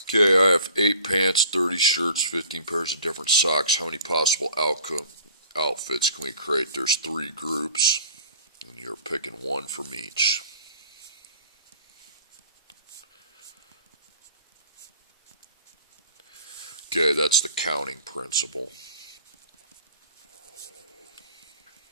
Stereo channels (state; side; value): inverted; both; correlation -0.49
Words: Okay, I have 8 pants, 30 shirts, 15 pairs of different socks. How many possible outfits can we create? There's 3 groups, and you're picking one from each. Okay, that's the counting principle.